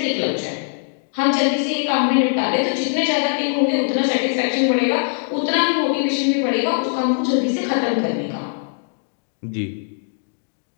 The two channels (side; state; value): right; silent; digital silence